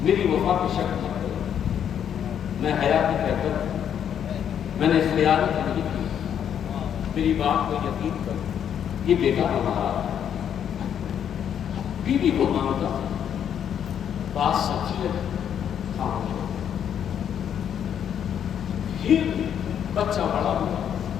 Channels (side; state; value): right; quieter; 9.0 dB